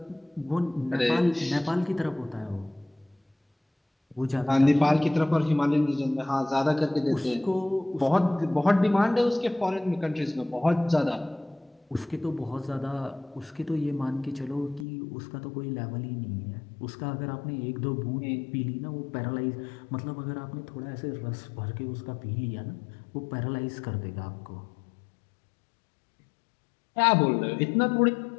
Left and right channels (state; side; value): drops out; right; at 14.9 s